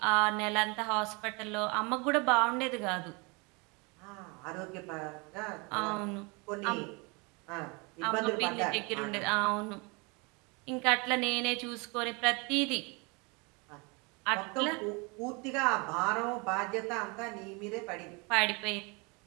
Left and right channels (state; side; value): quieter; left; 29.4 dB